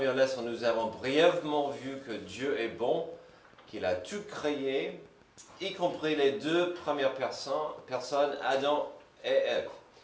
leçon, nous avons brièvement vu que Dieu est bon, qu'il a tout créé, y compris les 2 premières personnes, Adam et Ève.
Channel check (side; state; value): both; identical; correlation 1.00